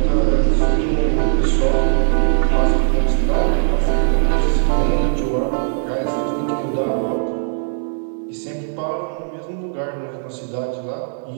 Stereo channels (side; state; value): left; silent; digital silence